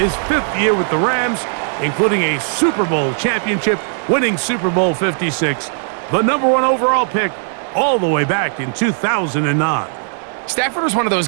his 5th year with the Rams, including a Super Bowl championship, winning Super Bowl 56. The #1 overall pick all the way back in 2009. Stafford was one of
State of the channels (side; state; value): left; silent; digital silence